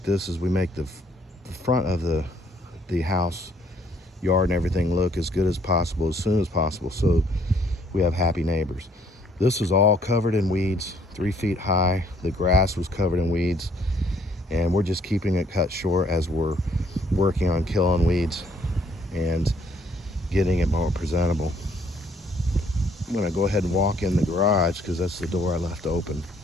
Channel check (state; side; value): normal; both; correlation 0.64